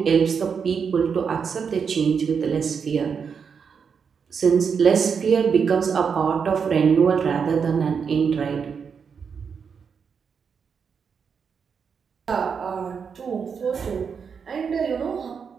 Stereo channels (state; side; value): quieter; left; 6.3 dB